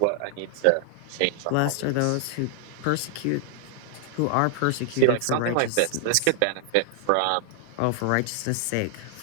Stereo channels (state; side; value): different; both; correlation 0.00